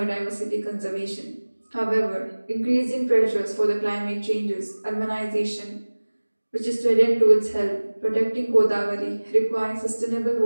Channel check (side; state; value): both; inverted; correlation -1.00